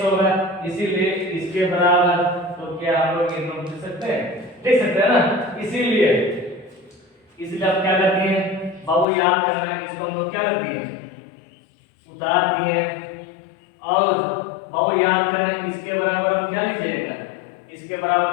होगा, इसीलिए इसके बराबर, तो क्या हम लोग ये नोट लिख सकते हैं ना, इसीलिए आप क्या करते हैं बाबू याद करना है, इसको हम लोग क्या करते हैं उतार दिए, और बाबू याद करना है इसके बराबर हम क्या लीजिएगा, इसके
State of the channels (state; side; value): drops out; right; at 9.1 s